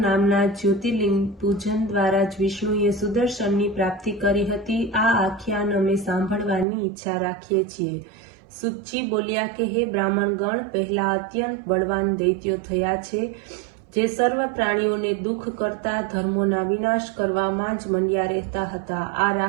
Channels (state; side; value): drops out; left; at 6.7 s